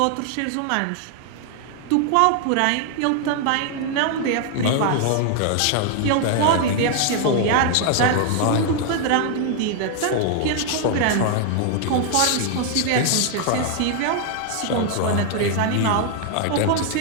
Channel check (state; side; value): different; both; correlation 0.00